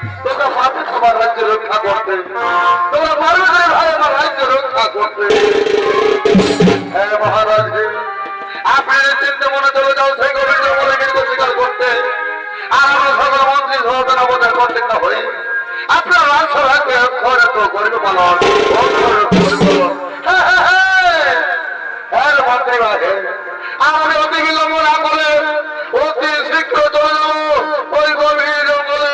তোমরা পারবে তোমার রাজ্য রক্ষা করতে, তোমরা পারবে ভাই আমার রাজ্য রক্ষা করতে। হ্যাঁ মহারাজ, আপনি চিন্তা মনে চলে যাও সেই গোবিন্দ মনে কিন্তু স্বীকার করতে, আর আমরা সকল মন্ত্রী সহজনা বোধ করতেন না হই আপনার রাজ্য রাখবে অক্ষরে তো করবে পালন। হ্যাঁ মন্ত্রী ভাই, আমি অতি বিলম্ব না করে অতি শীঘ্র চলে যাবো ওই গভীর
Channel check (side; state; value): both; identical; correlation 1.00